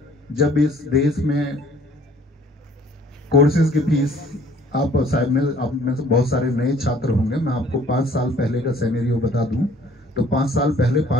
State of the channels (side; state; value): both; normal; correlation 0.56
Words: जब इस देश में कोर्सेज की फीस, आप शायद में आप में से बहुत सारे नए छात्र होंगे, मैं आपको 5 साल पहले का सिनेरियो बता दूं तो 5 साल पहले